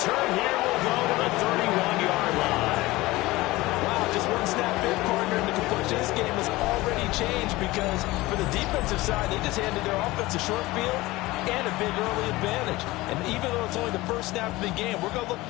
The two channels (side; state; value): right; quieter; 19.7 dB